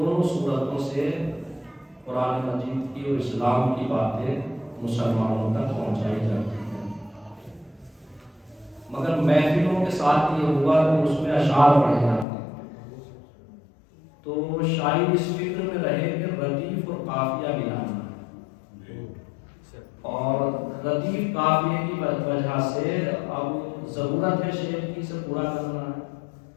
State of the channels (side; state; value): right; drops out; at 12.2 s